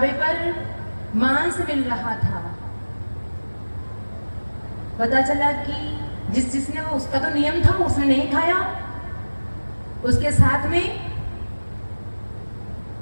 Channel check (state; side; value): inverted; both; correlation -1.00